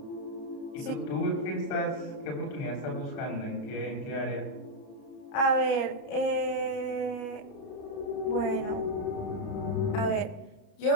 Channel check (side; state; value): right; late; 33 ms